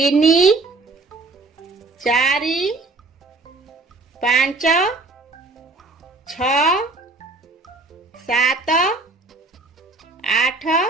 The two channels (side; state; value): left; quieter; 3.3 dB